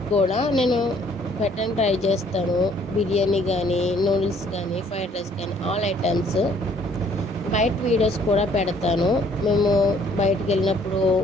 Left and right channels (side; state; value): both; normal; correlation 0.61